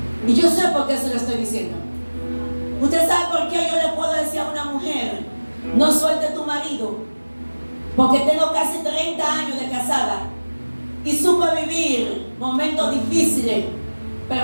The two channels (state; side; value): inverted; both; correlation -1.00